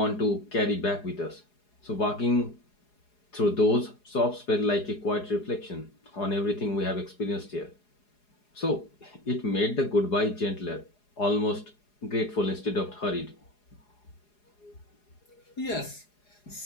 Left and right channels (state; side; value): late; right; 4.8 ms